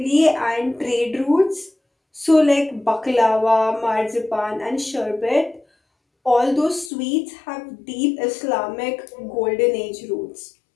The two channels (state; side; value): drops out; right; at 6.9 s